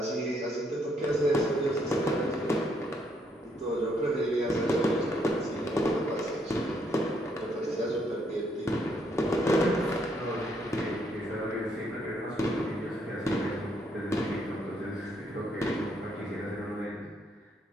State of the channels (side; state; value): both; normal; correlation 0.72